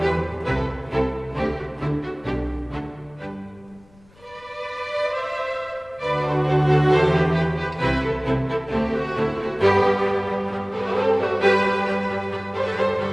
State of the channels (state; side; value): noise; left; rumble, 28 dB below the sound